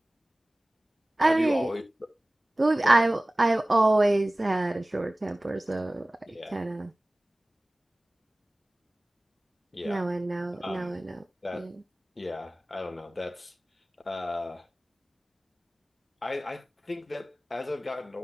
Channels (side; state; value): both; normal; correlation 0.98